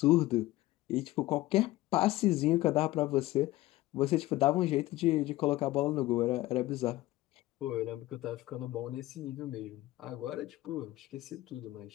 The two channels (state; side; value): quieter; right; 17.3 dB